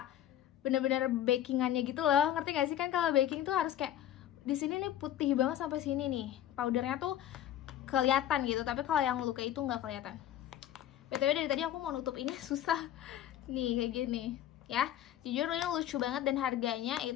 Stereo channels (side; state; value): right; quieter; 11.6 dB